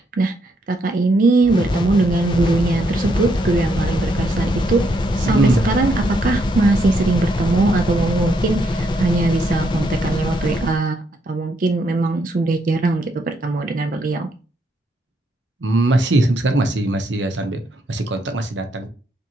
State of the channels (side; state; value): both; normal; correlation 0.75